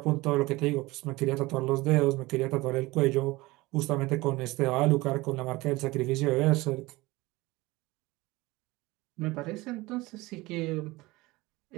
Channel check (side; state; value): left; quieter; 21.0 dB